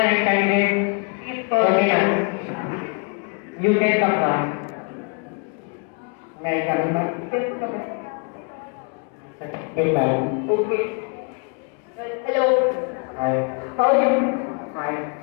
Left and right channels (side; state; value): right; quieter; 35.6 dB